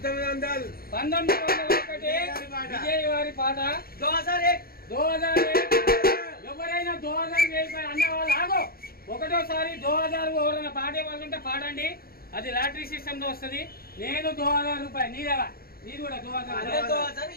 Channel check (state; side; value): late; right; 0.44 ms